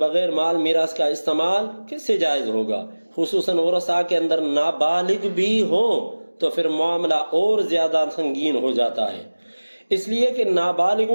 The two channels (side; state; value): both; inverted; correlation -1.00